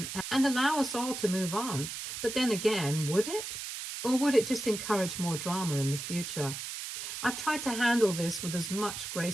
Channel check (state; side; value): noise; right; hiss, 7 dB below the sound